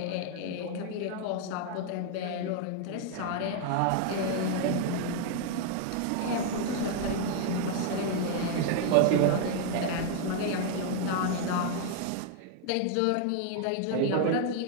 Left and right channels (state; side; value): different; both; correlation 0.00